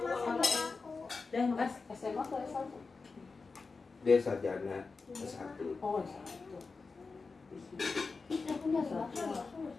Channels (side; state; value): right; quieter; 4.3 dB